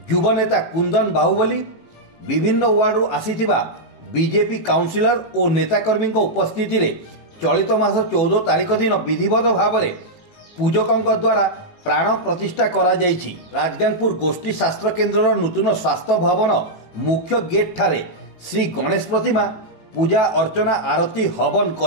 युव नेता कुंदन बाहुबली, विभिन्न वार्डरू आसीथिबा बीजेपी काउंसिलर और नेताकर्मी उपस्थिति रे चलित मास 14 तारिख दिन विधिवत भाव में पूजकों द्वारा प्राण प्रतिष्ठा करा जायछि। राजगांगपुर गोष्ठी शास्त्र केन्द्र नूतन स्वास्थ्य भवन मुख्य गेट ठारे श्री गणेश प्रतिमा पूजा अर्चना आरती हवन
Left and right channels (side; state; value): right; late; 18 ms